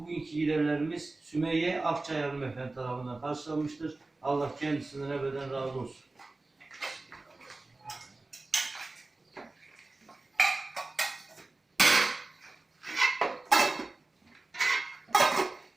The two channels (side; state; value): left; quieter; 3.2 dB